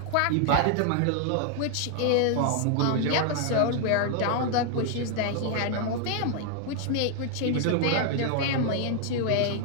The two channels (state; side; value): different; both; correlation 0.00